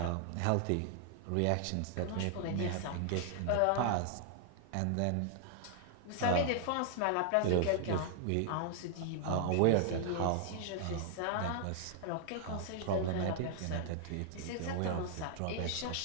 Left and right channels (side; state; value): both; different; correlation 0.00